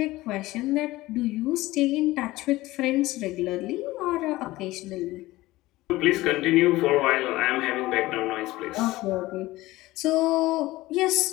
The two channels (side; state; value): right; quieter; 18.3 dB